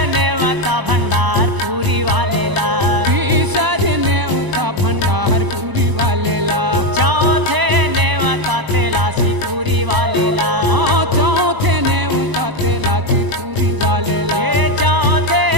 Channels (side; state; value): left; late; 1.0 ms